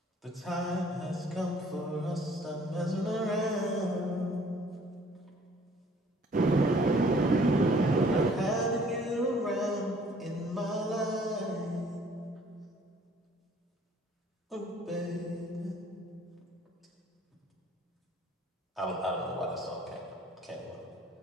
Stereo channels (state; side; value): normal; both; correlation 0.57